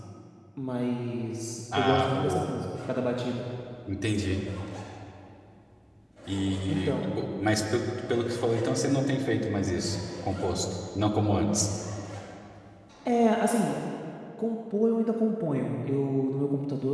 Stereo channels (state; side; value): identical; both; correlation 1.00